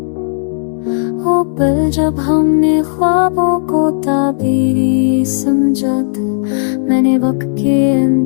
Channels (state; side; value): silent; right; digital silence